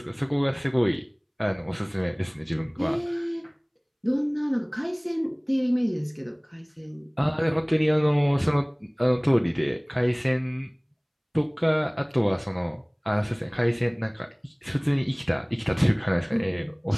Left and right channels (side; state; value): both; identical; correlation 1.00